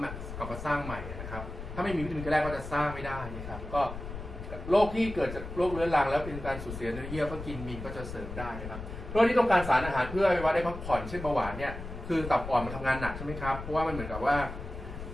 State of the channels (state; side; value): noise; left; rumble, 9 dB below the sound